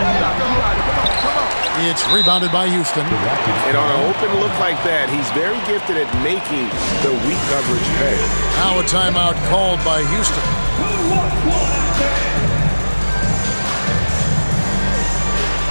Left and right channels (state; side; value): inverted; both; correlation -1.00